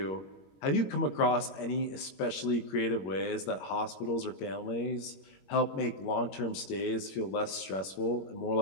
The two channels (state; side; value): late; right; 21 ms